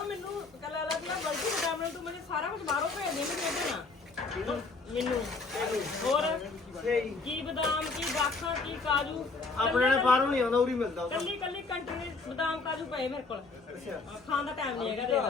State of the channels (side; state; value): right; quieter; 3.9 dB